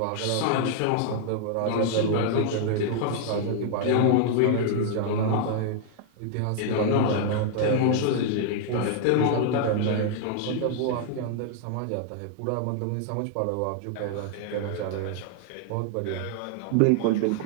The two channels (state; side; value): different; both; correlation 0.00